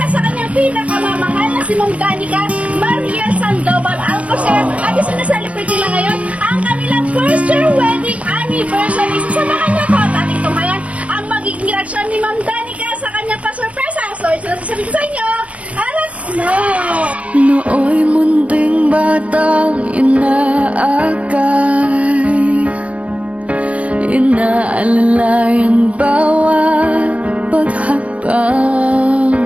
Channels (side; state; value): left; late; 0.065 ms